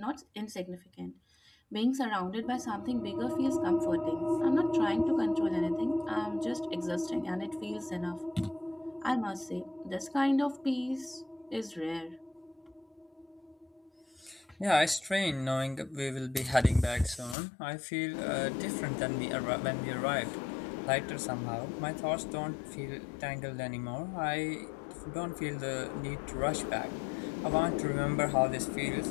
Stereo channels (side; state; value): right; drops out; at 17.4 s